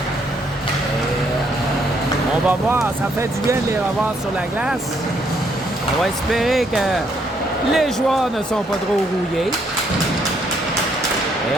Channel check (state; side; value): normal; both; correlation 0.71